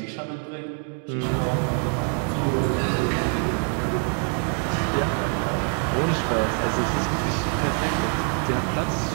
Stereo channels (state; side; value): quieter; left; 38.4 dB